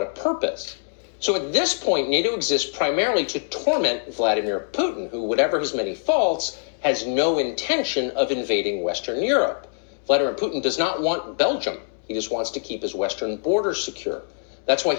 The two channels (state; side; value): silent; right; digital silence